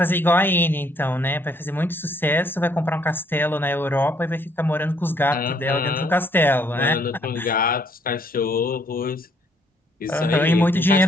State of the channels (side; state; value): both; normal; correlation 0.66